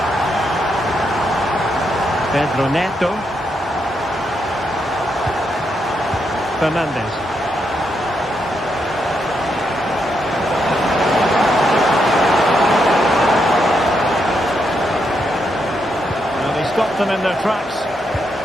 Pedro Neto. Fernandez. Well, they stopped them in their tracks.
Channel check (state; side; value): normal; both; correlation 0.80